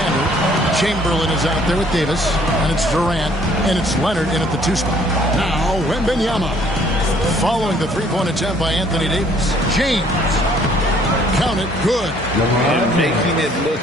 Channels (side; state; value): both; normal; correlation 0.60